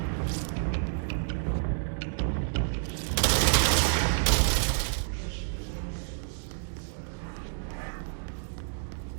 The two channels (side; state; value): left; silent; digital silence